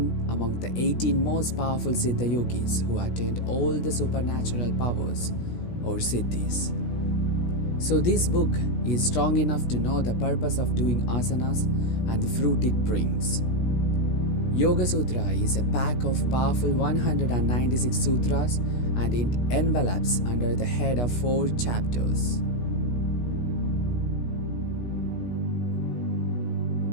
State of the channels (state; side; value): late; right; 16 ms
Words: among the 18 most powerful siddha yogis who attained all the supernatural powers, or siddhis. So this book is strong enough to know the purpose of doing asanas and the fruit it brings. Yoga Sutra is a pack of powerful 196 sutras, and it envelops under the head of 4 chapters.